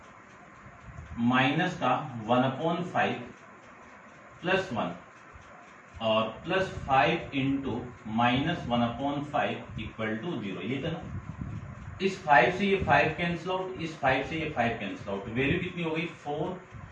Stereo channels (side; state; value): both; identical; correlation 1.00